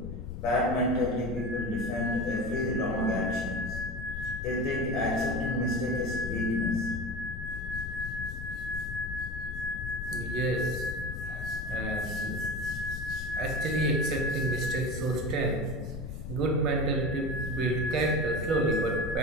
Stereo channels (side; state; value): left; noise; rumble, 7 dB below the sound